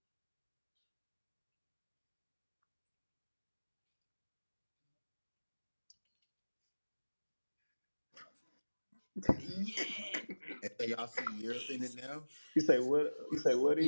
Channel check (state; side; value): inverted; both; correlation -1.00